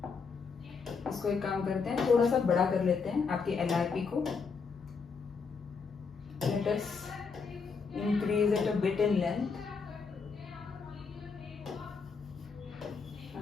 इसको एक काम करते हैं, थोड़ा सा बड़ा कर लेते हैं आपके LRP को। Let us increase it a bit in length.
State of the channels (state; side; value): quieter; right; 5.2 dB